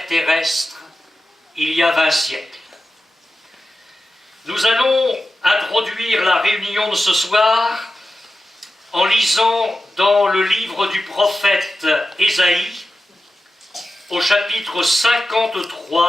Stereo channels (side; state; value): both; normal; correlation 0.93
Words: terrestre, il y a 20 siècles. Nous allons introduire la réunion de ce soir en lisant dans le livre du prophète Ésaïe, au chapitre